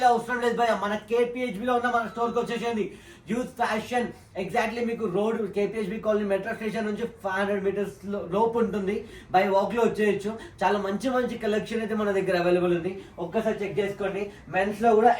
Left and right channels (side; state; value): both; identical; correlation 1.00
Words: అవసరం లేదు భయ్యా. మన KPHB లో ఉన్న మన స్టోర్ కి వచ్చేసింది. యూత్ ఫ్యాషన్ ఎగ్జాక్ట్లీ మీకు road KPHB colony metro station నుంచి 500 మీటర్స్ లోపు ఉంటుంది. బై వాక్ లో వచ్చేయచ్చు. చాలా మంచి కలెక్షన్ అయితే మన దగ్గర అవైలబుల్ ఉంది. ఒక్కసారి చెక్ చేసుకోండి. మెన్స్ లో కూడా